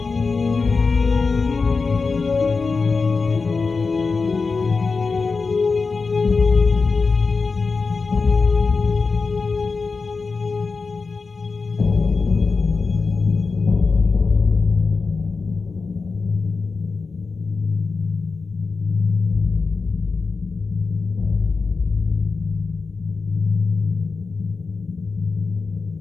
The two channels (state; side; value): quieter; right; 4.4 dB